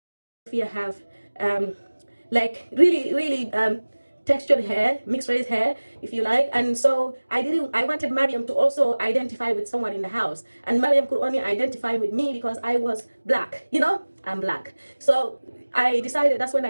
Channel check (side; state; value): both; inverted; correlation -1.00